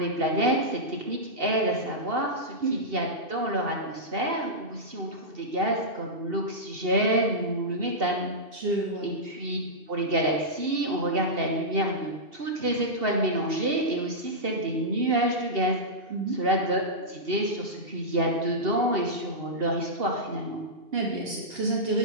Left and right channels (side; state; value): left; late; 2.7 ms